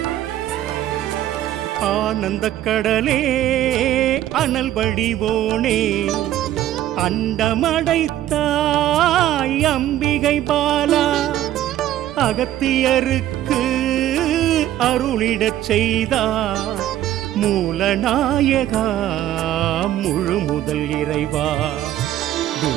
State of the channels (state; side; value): quieter; left; 12.9 dB